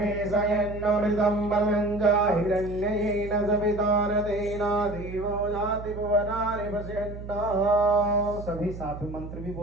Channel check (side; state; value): right; noise; hum, 11 dB below the sound